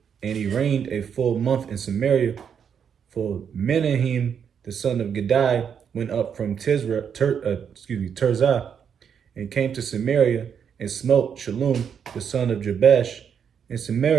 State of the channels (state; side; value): quieter; left; 7.5 dB